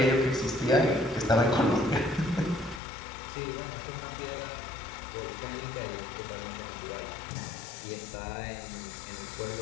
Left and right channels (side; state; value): right; drops out; at 2.8 s